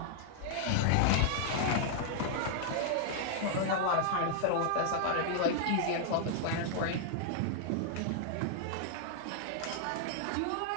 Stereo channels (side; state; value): both; different; correlation -0.01